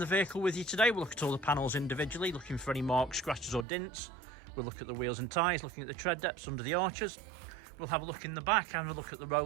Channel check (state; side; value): drops out; left; at 3.7 s